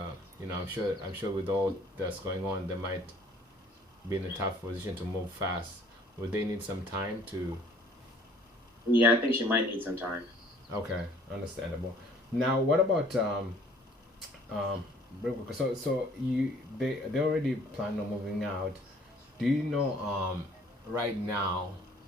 I'm sure with all that's going on, they might be in a tough position to move fast. Would they need some time to? Yeah, I think she might need some time. Okay, understandable. Now, what about real quick, so they already plan on moving out. Do you know right now,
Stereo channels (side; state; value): both; normal; correlation 0.56